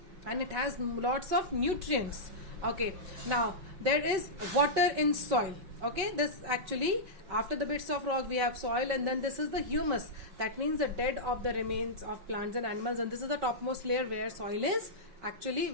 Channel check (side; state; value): left; late; 5.3 ms